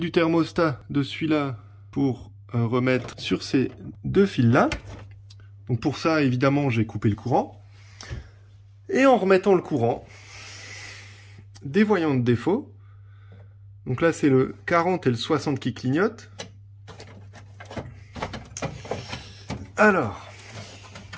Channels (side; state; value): both; identical; correlation 1.00